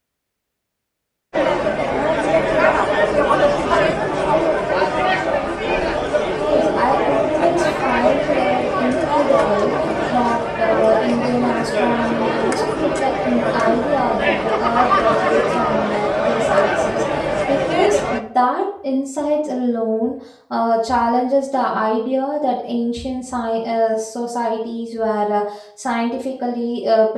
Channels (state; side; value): identical; both; correlation 1.00